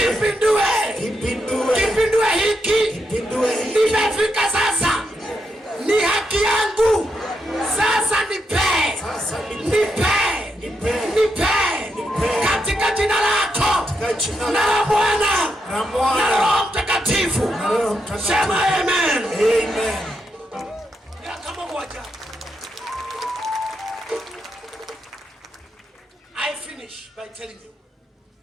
Kipindue hiki. Nimefika sasa. Ni haki yangu. Sasa nipe. Katika jina lako. Na la Bwana. Na la Roho Mtakatifu. Sema amen. Ya kama moja. I finish by telling you.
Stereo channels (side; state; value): both; normal; correlation 0.82